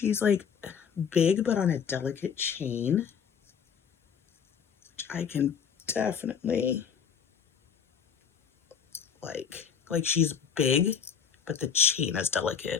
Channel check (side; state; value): right; quieter; 7.2 dB